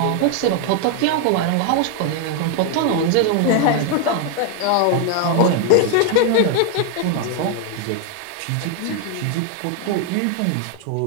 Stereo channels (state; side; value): different; both; correlation 0.01